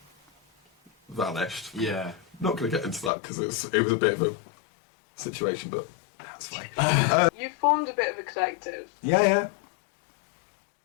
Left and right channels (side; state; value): right; drops out; at 3.1 s